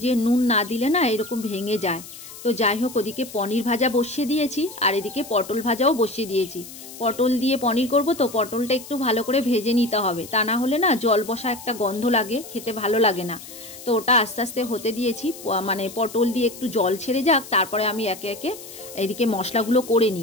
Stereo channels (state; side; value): noise; left; hiss, 15 dB below the sound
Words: যে নুন না দিলে না এরকম ভেঙে যায়। তো যাই হোক, ওদিকে পনির ভাজা বসিয়ে দিয়েছি, আর এদিকে পটল ভাজাও বসিয়ে দিয়েছি। পটল দিয়ে পনির করব, তো পটলটা একটু ভালো করে ভেজে নিতে হবে, তা না হলে না জল বসা একটা গন্ধ লাগে, খেতে ভালো লাগে না। তো ওটা আস্তে আস্তে হতে দিয়েছি, মানে পটল দিয়ে একটু জল ছেড়ে যাক, তারপরে আমি একে একে এদিকে মশলাগুলো করে